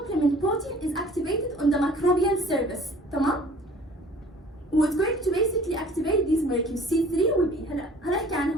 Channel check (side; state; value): both; normal; correlation 0.50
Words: protein is activated on the microbial surface. تمام?